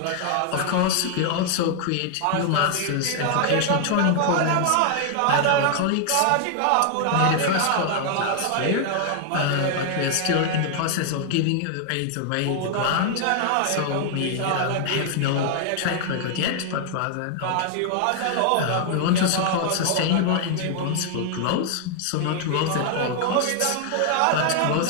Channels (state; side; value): different; both; correlation 0.00